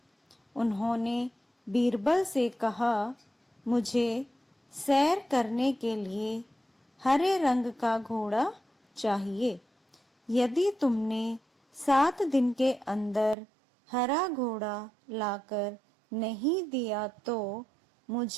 उन्होंने बीरबल से कहा, मुझे सैर करने के लिए हरे रंग का घोड़ा चाहिए। यदि तुमने 7 दिन के अंदर हरा घोड़ा लाकर नहीं दिया तो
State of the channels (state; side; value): drops out; left; at 13.4 s